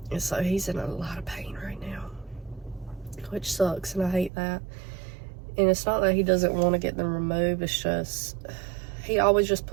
And so he's in a lot of pain right now, which sucks, and I hate that. And it's not that he doesn't want to get them removed, it's just he always just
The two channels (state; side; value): drops out; left; at 4.3 s